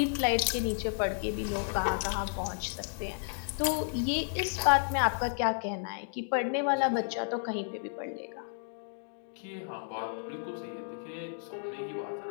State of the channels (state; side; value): silent; right; digital silence